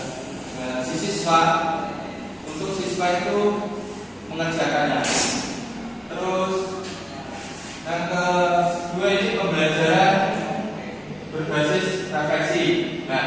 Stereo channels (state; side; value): identical; both; correlation 1.00